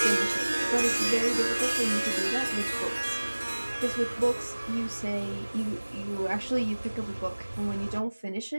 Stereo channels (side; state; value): both; inverted; correlation -1.00